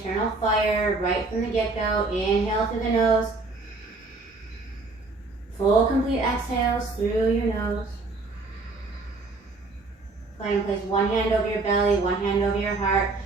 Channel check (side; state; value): left; quieter; 3.5 dB